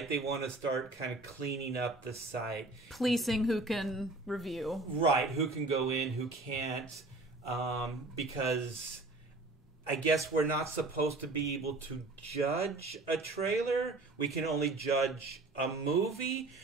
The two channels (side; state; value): left; quieter; 3.1 dB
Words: They want to start kind of cleaning up the site. Policing who can review. Right, who can go in, who can't. Because I guess we're not supposed to be able to judge a trailer. We can only judge a movie.